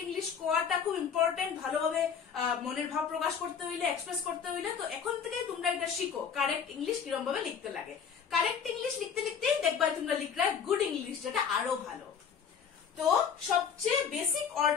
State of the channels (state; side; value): quieter; right; 7.0 dB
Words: ইংলিশ কোয়াটা খুব ইম্পর্টেন্ট, ভালোভাবে মনের ভাব প্রকাশ করতে হইলে, এক্সপ্রেস করতে হইলে। তো এখন থেকে তোমরা এটা শিখো কারেক্ট ইংলিশ কিরকম ভাবে লিখতে লাগে। কারেক্ট ইংলিশ লিখতে লিখতেই দেখবা তোমরা লিখলে গুড ইংলিশ, যেটা আরো ভালো। তো সবচেয়ে বেসিক